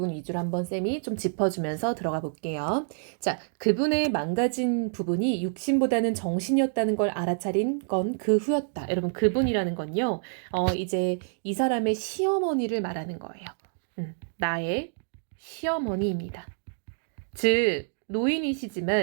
위주로 한번 쌤이 좀 짚어주면서 들어가 볼게요. 자, 그분의 망가진 부분이 육신보다는 정신이었다는 걸 알아차린 건 그 후였다. 여러분, 그분이라는 건요. 이제 이 사람의 시어머니를 말하는 거예요. 나의 시어머니입니다. 즉,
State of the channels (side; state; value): left; silent; digital silence